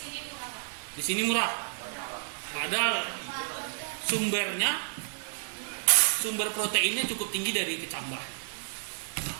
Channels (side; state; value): left; silent; 57 dB below the other